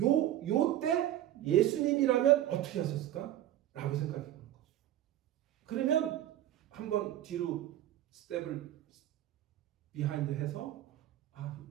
때 예수님이라면 어떻게 하셨을까? 라고 생각해보는 거죠. 그러면 한번 뒤로 스텝을 비하인드 해서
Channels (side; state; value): left; quieter; 12.8 dB